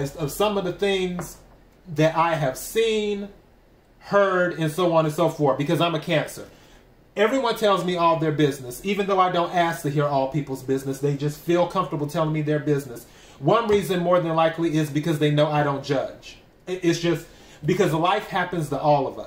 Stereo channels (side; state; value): both; identical; correlation 1.00